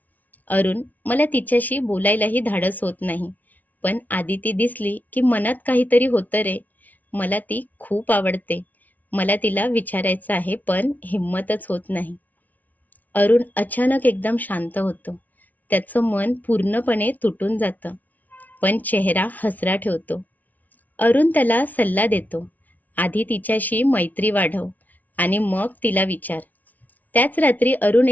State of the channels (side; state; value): right; late; 0.078 ms